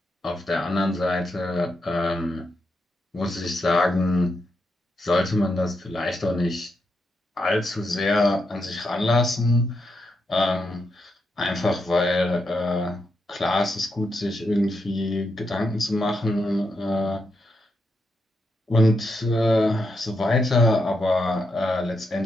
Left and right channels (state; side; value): normal; both; correlation 0.83